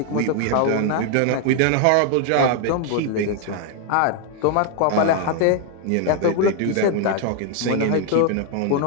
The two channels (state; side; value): different; both; correlation 0.00